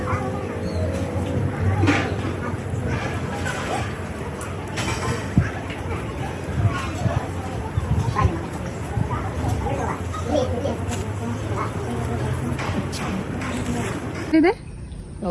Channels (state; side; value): identical; both; correlation 1.00